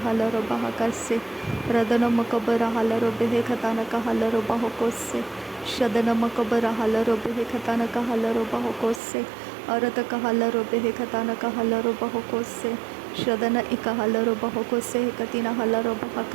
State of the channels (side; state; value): left; drops out; at 9.0 s